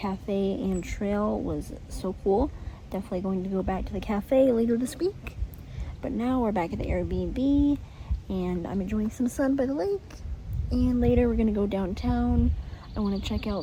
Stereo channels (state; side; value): identical; both; correlation 1.00